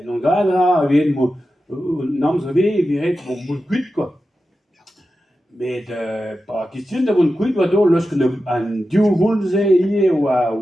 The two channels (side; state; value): both; normal; correlation 0.92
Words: non gadra, ven mo, namz ave, viret, bon, moun kuit, met pa question da vont kuit oa dol losk an diou voulze ie oa